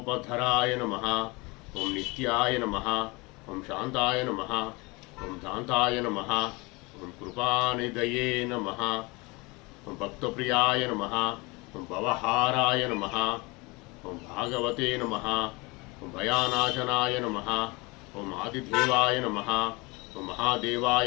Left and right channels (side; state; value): right; quieter; 25.7 dB